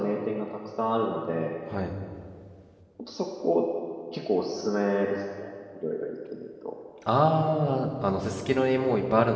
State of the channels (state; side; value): identical; both; correlation 1.00